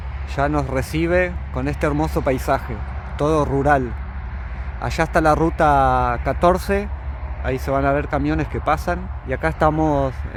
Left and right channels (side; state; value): both; identical; correlation 1.00